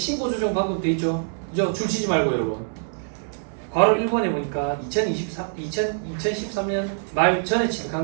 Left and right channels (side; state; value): left; silent; digital silence